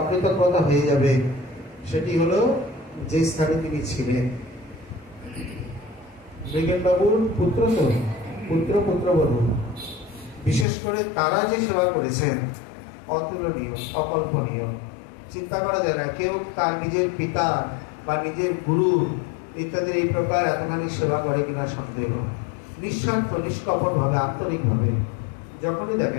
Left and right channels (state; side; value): drops out; right; at 10.7 s